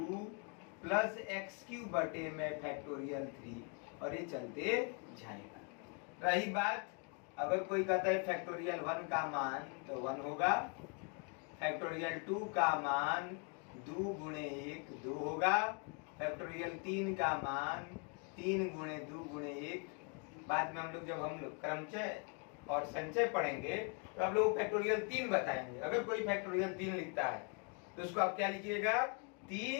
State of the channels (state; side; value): quieter; right; 36.7 dB